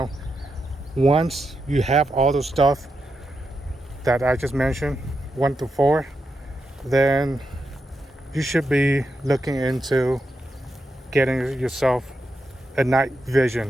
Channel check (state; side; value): normal; both; correlation 0.85